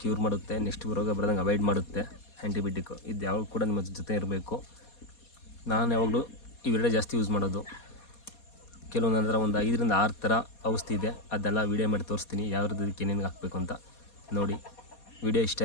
ಕ್ಯೂರ್ ಮಾಡುತ್ತೆ, ನೆಕ್ಸ್ಟ್ ರೋಗ ಬರೋದಂಗೆ ಅವಾಯ್ಡ್ ಮಾಡುತ್ತೆ ಆ್ಯಂಟಿಬಯೋಟಿಕ್ಕು. ಇದು ಯಾವಾಗ ಕೂಡ ನಿಮ್ಮ ಜೊತೆ ಇರಬೇಕು. ನಾನು ಯಾವಾಗಲೂ ಇವೆರಡೇ ಜಾಸ್ತಿ ಯೂಸ್ ಮಾಡೋದು. ಕೆಲವೊಂದು ಅಂದರೆ ಒಂದು 5-6 ಥರ ಔಷಧಿ ಇದೆ, ಅದೆಲ್ಲ ವೀಡಿಯೋ ಮಾಡಿ ತೋರಿಸ್ತೀನಿ, ಯಾವ್ದಕ್ಕೆ ಏನೇನು ಹಾಕಬೇಕು ಅಂತ. ನೋಡಿ, ವಿಡಿಯೋ ಇಷ್ಟ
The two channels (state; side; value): late; right; 4.2 ms